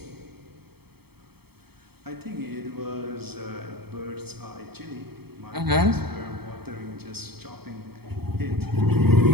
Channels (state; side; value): late; left; 0.96 ms